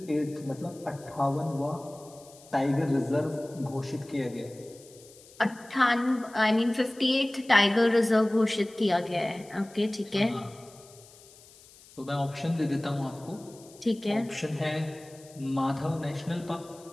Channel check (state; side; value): noise; left; hiss, 23 dB below the sound